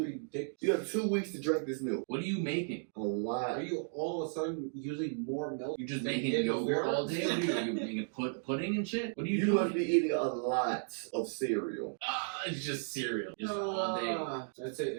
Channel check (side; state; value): left; silent; digital silence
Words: weeks. ridiculous. You have 2 weeks to drink this milk. What are you making? A lot. Are you all of a sudden using more milk? You just than making you did yogurt before? all day? What are you making pudding and shit? What are you You doing? must be eating a lot of cereal. It's just cereal. Just all day. That's it.